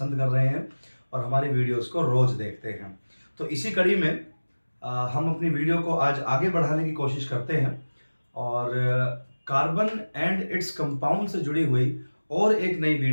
कर रहे हैं और हमारी वीडियोस को रोज़ देखते हैं। तो इसी कड़ी में हम अपनी वीडियो को आज आगे बढ़ाने की कोशिश करते हैं और कार्बन एंड इट्स कंपाउंड से जुड़ी हुई और एक नई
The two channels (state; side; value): inverted; both; correlation -1.00